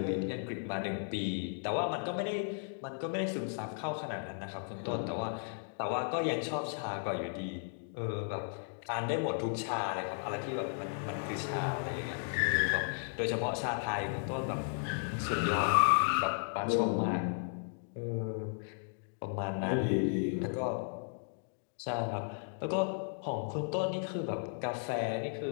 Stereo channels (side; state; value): right; silent; digital silence